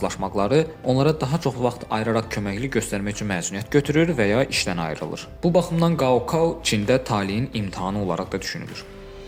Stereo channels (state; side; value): identical; both; correlation 1.00